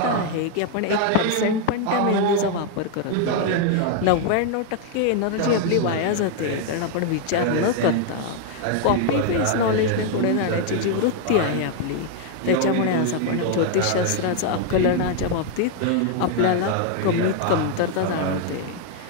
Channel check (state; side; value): different; both; correlation 0.00